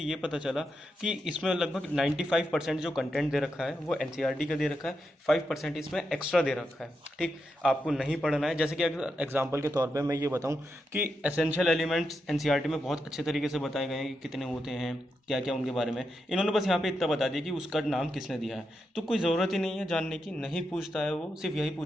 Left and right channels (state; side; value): normal; both; correlation 0.85